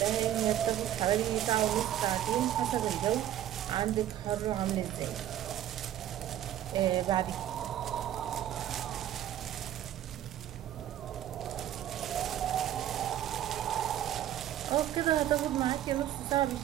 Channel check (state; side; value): quieter; left; 11.8 dB